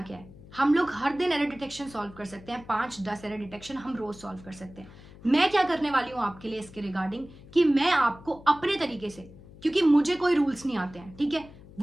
क्या है? हम लोग हर दिन एरर डिटेक्शन सॉल्व कर सकते हैं, 5-10 एरर डिटेक्शन हम रोज सॉल्व कर सकते हैं. मैं क्या करने वाली हूं आपके लिए इसके रिगार्डिंग कि मैं आपको अपने तरीके से, क्योंकि मुझे कोई रूल्स नहीं आते हैं, ठीक है,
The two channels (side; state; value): left; noise; hum, 20 dB below the sound